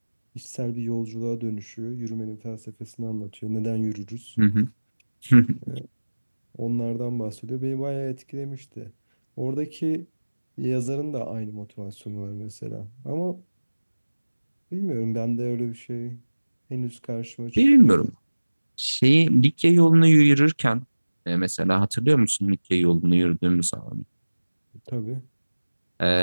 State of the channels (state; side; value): inverted; both; correlation -1.00